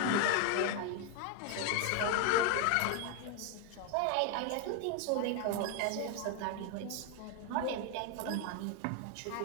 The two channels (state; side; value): different; both; correlation 0.01